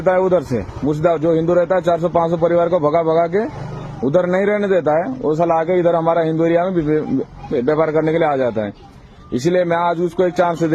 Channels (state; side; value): identical; both; correlation 1.00